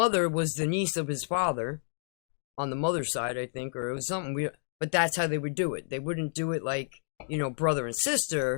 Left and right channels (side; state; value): right; silent; digital silence